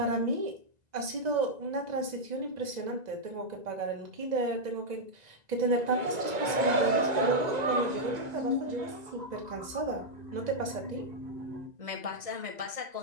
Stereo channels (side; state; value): left; late; 2.0 ms